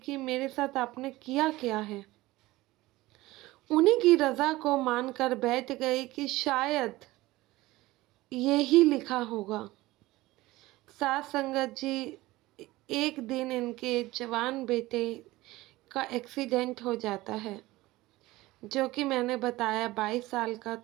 मेरे साथ आपने किया क्या है। उन्हीं की रज़ा को मानकर बैठ गई कि शायद यही लिखा होगा। साथ संगत जी, एक दिन इनके जवान बेटे का एक्सीडेंट हो जाता है, जो कि मैंने बताया 22 साल का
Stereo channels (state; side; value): quieter; left; 18.7 dB